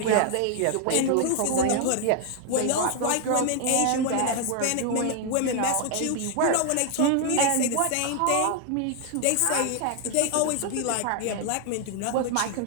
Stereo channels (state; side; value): different; both; correlation 0.00